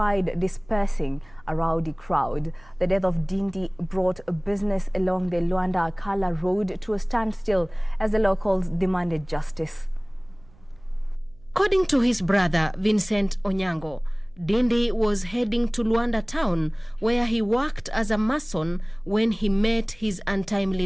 dispersing a rowdy crowd. The death of Dindi brought business along the Luanda-Akala road to a standstill as the locals demanded justice. According to his brother, Vincent Onyango, Dindi was heading to Luanda town where he worked as a mason when he met his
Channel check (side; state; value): right; noise; hum, 27 dB below the sound